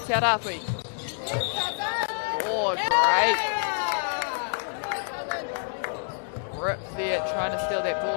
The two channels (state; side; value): silent; right; digital silence